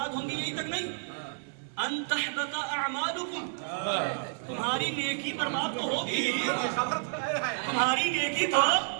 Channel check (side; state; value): left; silent; 58 dB below the other